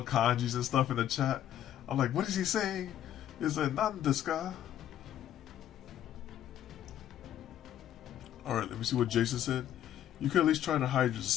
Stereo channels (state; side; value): quieter; right; 11.2 dB